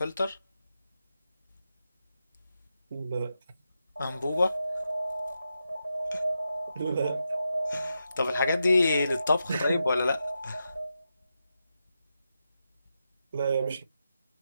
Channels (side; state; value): both; inverted; correlation -0.87